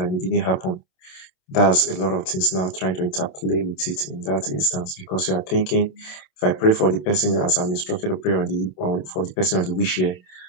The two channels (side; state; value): right; late; 27 ms